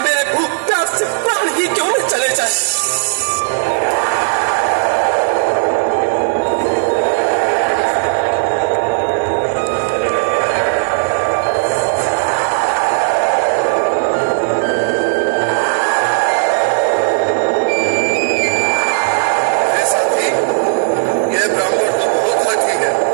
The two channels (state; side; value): silent; left; digital silence